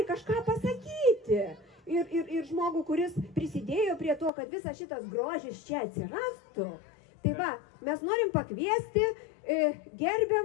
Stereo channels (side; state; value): right; drops out; at 4.3 s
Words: kažką pasakyti. Ir žmogų, kuris prisidėjo prie to, kad visas šitas grožis čia atsirastų. Tai va, mes norim pakviesti